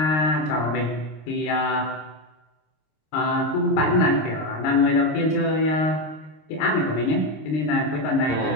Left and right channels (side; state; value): right; late; 26 ms